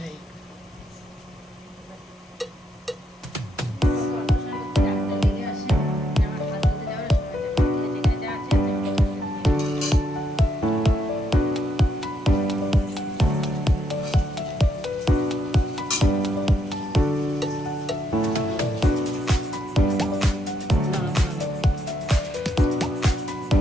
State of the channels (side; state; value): both; normal; correlation 0.77